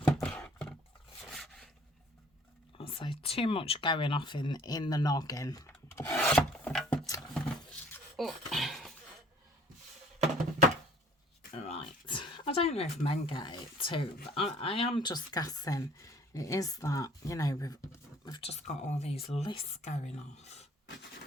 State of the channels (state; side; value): normal; both; correlation 0.55